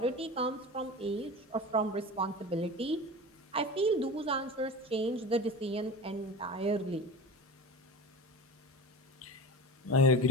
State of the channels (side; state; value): both; normal; correlation 0.31